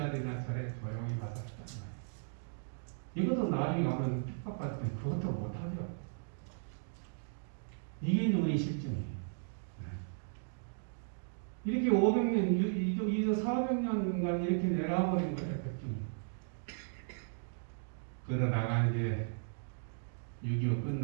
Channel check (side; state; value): left; silent; digital silence